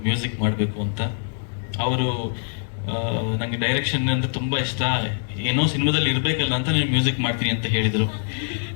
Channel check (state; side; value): silent; right; digital silence